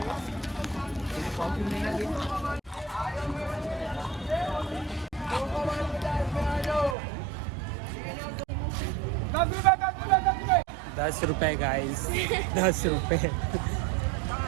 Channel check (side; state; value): left; drops out; at 7.0 s